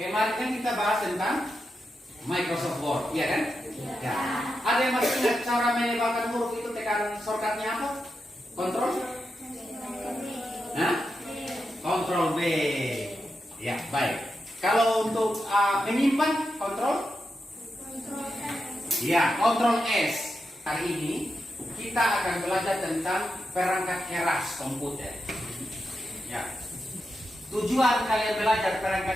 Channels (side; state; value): both; normal; correlation 0.87